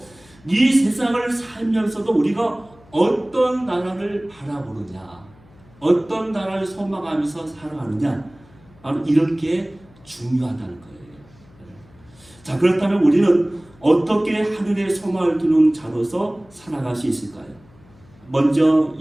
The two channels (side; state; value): left; noise; hum, 27 dB below the sound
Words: 이 세상을 살면서도 우리가 어떤 나라를 바라보느냐, 어떤 나라를 소망하면서 살아가느냐, 바로 이런 게 중요하다는 거예요. 자, 그렇다면 우리는 어떻게 하늘의 소망을 두는 자로서 살아갈 수 있을까요? 먼저